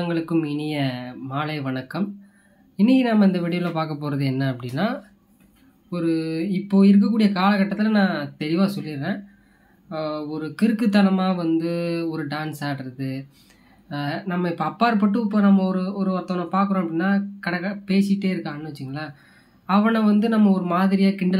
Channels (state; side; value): identical; both; correlation 1.00